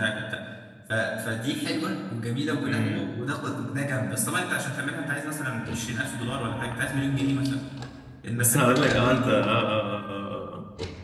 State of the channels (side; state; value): both; identical; correlation 1.00